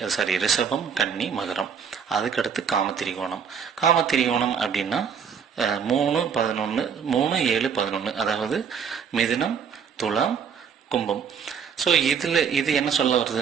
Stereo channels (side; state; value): left; quieter; 7.0 dB